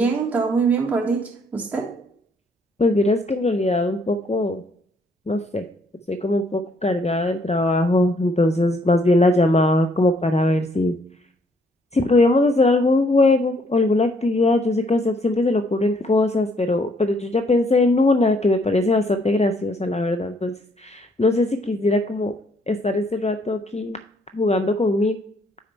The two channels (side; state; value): both; normal; correlation 0.67